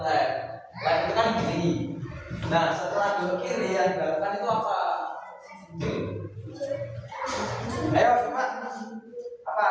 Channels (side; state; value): both; identical; correlation 1.00